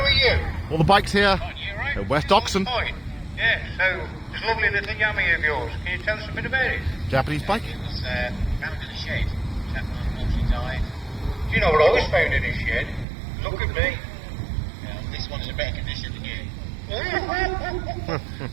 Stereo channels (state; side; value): drops out; left; at 13.1 s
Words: you? All the bikes here You right? at West Oxon. Fine. Yeah, so this lovely little yummy of yours. Can you tell us a bit about it? Japanese bike. It was found in a shed. Chap unfortunately died. Do you know what I was found in this shed? Look at me. Yeah, this one's in better condition than you.